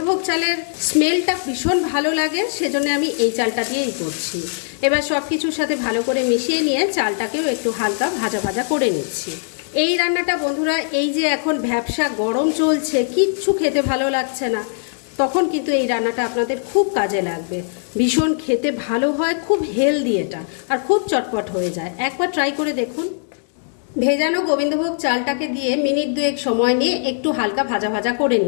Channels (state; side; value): silent; right; digital silence